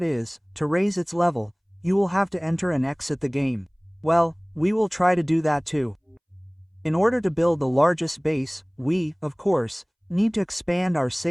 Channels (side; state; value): both; identical; correlation 1.00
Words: is, to raise its level, you will have to enter and exit the game. Well, we will try to do that too. In order to build the largest base, we, of course, need to expand our